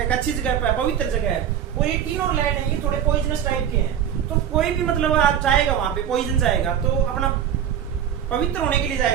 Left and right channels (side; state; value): left; quieter; 9.4 dB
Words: अच्छी जगह पे, पवित्र जगह है, और ये टिन और लेड है, ये थोड़े पॉइजनस टाइप के हैं, तो कोई भी मतलब आप जाएगा वहां पे, पॉइजन जाएगा तो अपना पवित्र होने के लिए